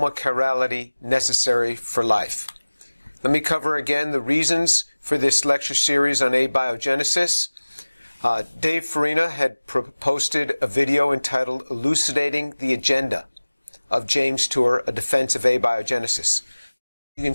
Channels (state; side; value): inverted; both; correlation -1.00